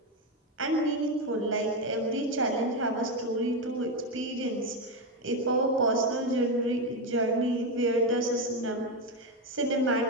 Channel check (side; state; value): both; normal; correlation 0.10